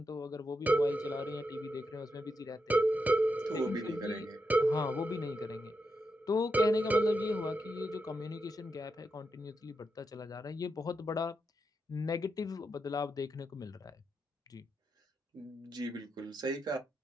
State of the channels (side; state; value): both; normal; correlation 0.85